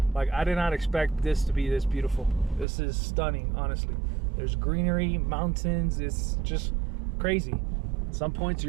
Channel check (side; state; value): left; drops out; at 2.7 s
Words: like I did not expect this to be this beautiful. This is stunning, honestly. There's greenery, mountains. It's just crazy. At some points